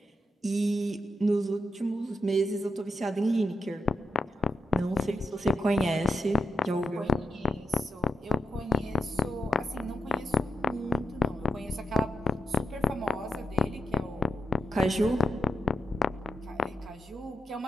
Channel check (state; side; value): normal; both; correlation 0.86